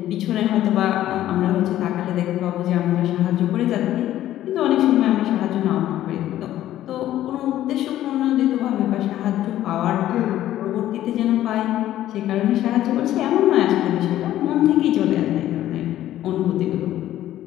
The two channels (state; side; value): quieter; right; 13.2 dB